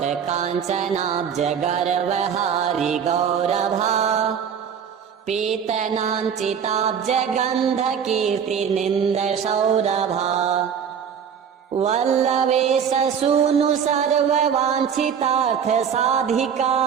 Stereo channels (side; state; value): left; quieter; 7.6 dB